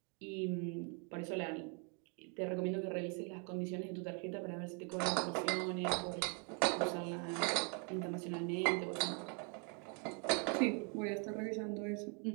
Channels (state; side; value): quieter; left; 37.8 dB